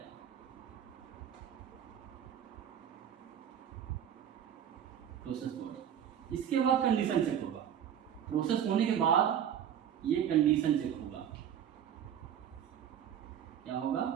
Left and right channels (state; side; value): quieter; left; 9.4 dB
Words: प्रोसेस बॉडी। इसके बाद कंडीशन चेक होगा, प्रोसेस होने के बाद ये कंडीशन चेक होगा। क्या होगा,